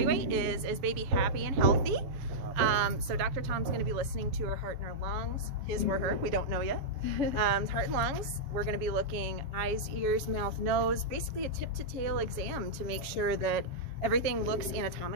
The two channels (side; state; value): left; late; 7.2 ms